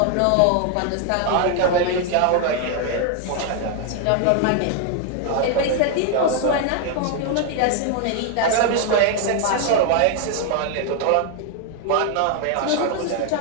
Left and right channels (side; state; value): both; different; correlation 0.00